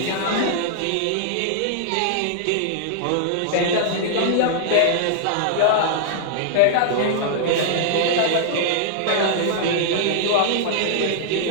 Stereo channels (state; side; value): different; both; correlation -0.01